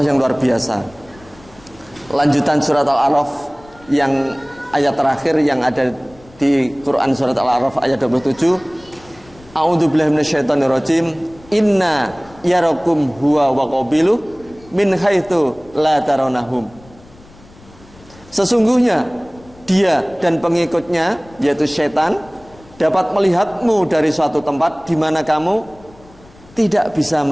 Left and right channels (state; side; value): noise; left; rumble, 25 dB below the sound